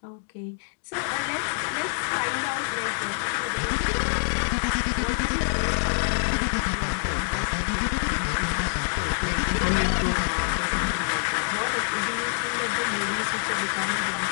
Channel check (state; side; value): silent; right; 61 dB below the other